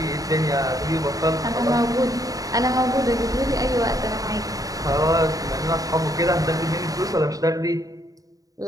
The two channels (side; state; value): left; late; 0.17 ms